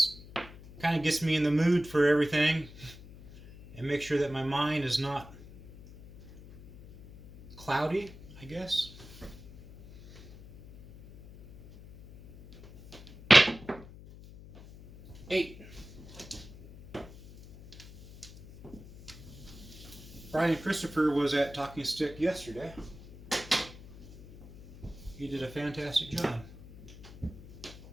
kind of gets me in the mood for everything and make sure that my mind is not cloudy, I guess. Eight. Brian Christopher was at Talking Stick yesterday. He did a fantastic job.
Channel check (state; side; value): noise; left; hum, 18 dB below the sound